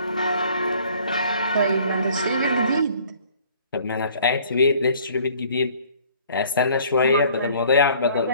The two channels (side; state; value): both; inverted; correlation -0.55